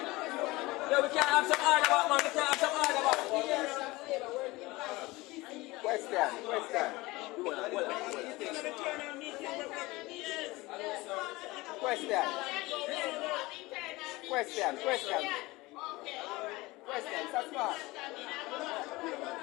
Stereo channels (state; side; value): quieter; right; 21.2 dB